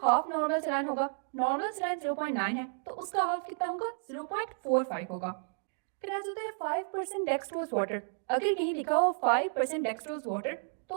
हाफ नॉर्मल सलाइन होगा, नॉर्मल सलाइन 0.9 है तो उसका हाफ कितना होगा, 0.45 होगा। फिर आ जाता है 5% डेक्सट्रोज वाटर। अगर कहीं लिखा हो 5% डेक्सट्रोज वाटर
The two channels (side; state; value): left; silent; digital silence